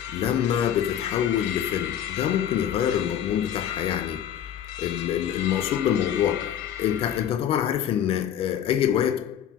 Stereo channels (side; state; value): right; quieter; 9.9 dB